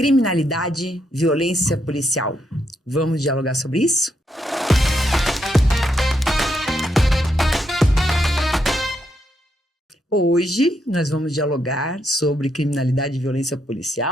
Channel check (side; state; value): both; normal; correlation 0.79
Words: Criminalidade, violência policial. Vamos dialogar sobre isso? Hoje nós vamos dialogar sobre criminalidade e violência